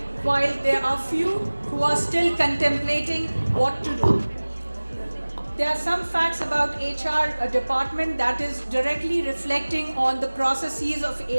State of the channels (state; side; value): inverted; both; correlation -1.00